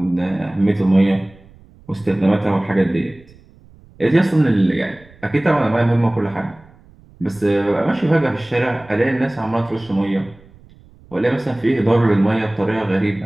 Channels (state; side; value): noise; right; rumble, 26 dB below the sound